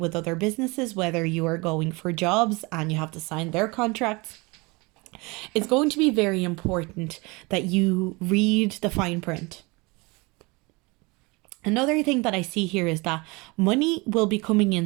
other businesses, whether you are going for jobs and you have to sign their contracts, it's going to be very important that you read the fine print. Another thing that I see here is that money will be coming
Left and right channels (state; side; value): quieter; left; 26.0 dB